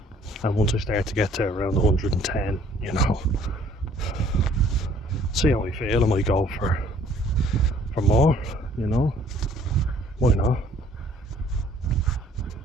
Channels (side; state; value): both; normal; correlation 0.58